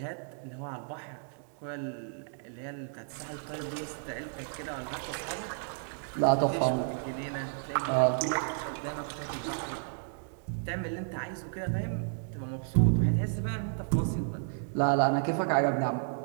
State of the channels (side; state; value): left; silent; digital silence